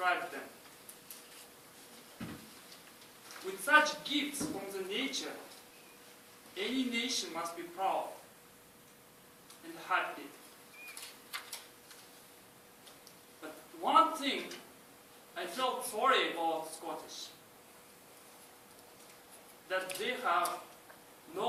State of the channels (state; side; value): identical; both; correlation 1.00